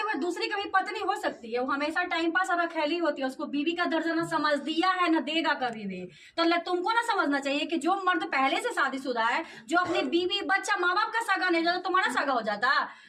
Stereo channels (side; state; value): both; identical; correlation 1.00